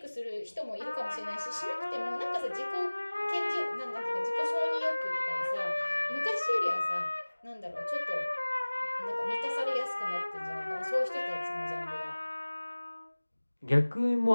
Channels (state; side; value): inverted; both; correlation -1.00